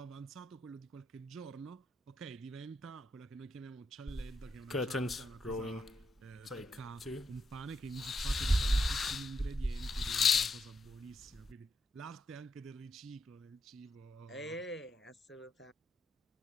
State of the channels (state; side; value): normal; both; correlation 0.81